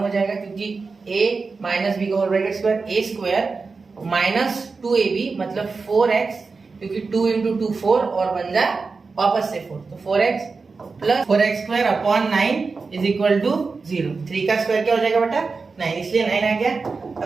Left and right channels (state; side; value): quieter; left; 4.4 dB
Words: हो जाएगा, क्योंकि a माइनस b का whole bracket square, a square minus 2ab मतलब 4x, क्योंकि 2 इंटू 2 4 और बन जाए वापस से 4, तो 4x plus 4x² upon 9 is equal to 0। 3 का स्क्वायर क्या हो जाएगा बेटा 9, इसलिए 9 आ गया।